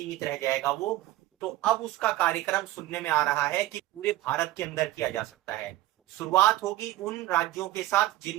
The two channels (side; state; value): left; quieter; 15.9 dB